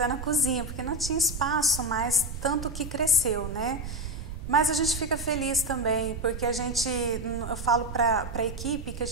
na cozinha, porque não tinha espaço mais, tanto que cresceu, né? Mas a gente fica feliz também, porque eu falo para a equipe que a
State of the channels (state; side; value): noise; right; rumble, 8 dB below the sound